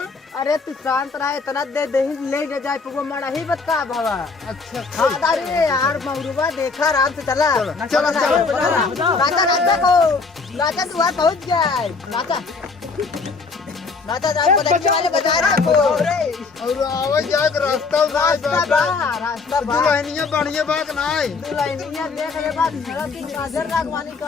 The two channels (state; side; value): quieter; right; 4.4 dB